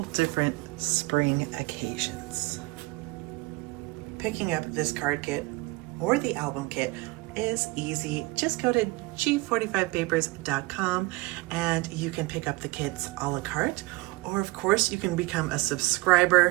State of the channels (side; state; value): left; quieter; 22.9 dB